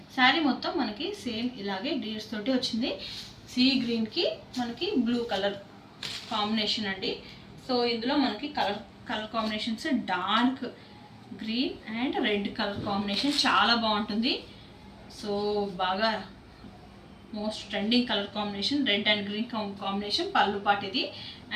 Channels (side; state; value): both; identical; correlation 1.00